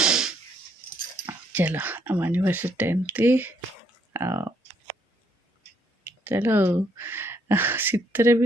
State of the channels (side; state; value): both; normal; correlation 0.70